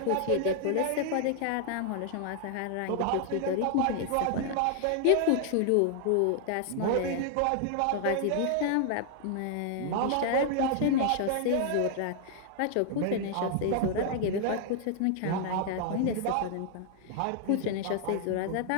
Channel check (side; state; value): both; different; correlation 0.00